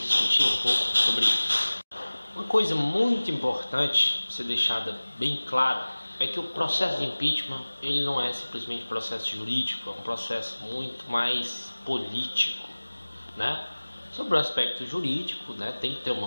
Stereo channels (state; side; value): inverted; both; correlation -1.00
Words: discutir um pouco sobre isso. Uma coisa muito importante ser deixada bem clara é que o processo de impeachment ele não é simplesmente processo jurídico, é um processo muito mais político, né? Sobre o aspecto jurídico, né, tem que ter